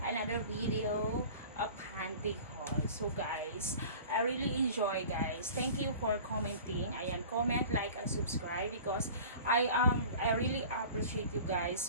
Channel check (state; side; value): inverted; both; correlation -0.41